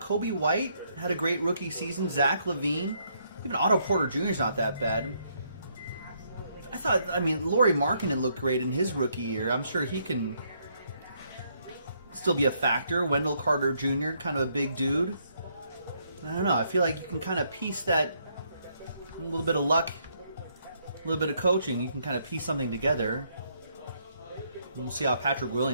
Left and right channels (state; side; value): inverted; both; correlation -0.72